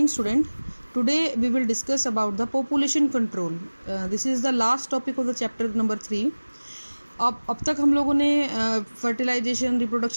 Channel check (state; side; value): inverted; both; correlation -1.00